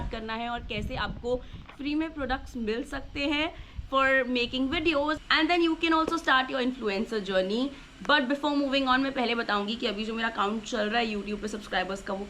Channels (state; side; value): identical; both; correlation 1.00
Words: करना है और कैसे आपको फ्री में प्रोडक्ट्स मिल सकते हैं for making videos, and then you can also start your influencer journey. But before moving on, मैं पहले बताऊंगी कि अभी जो मेरा काउंट चल रहा है YouTube पे सब्सक्राइबर्स का वो